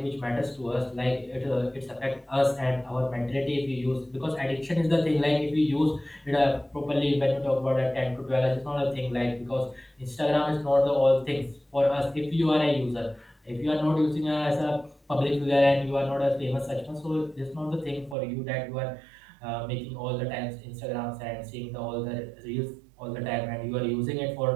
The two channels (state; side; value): drops out; left; at 18.2 s